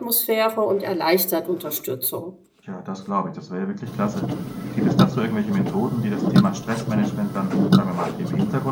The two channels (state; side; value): identical; both; correlation 1.00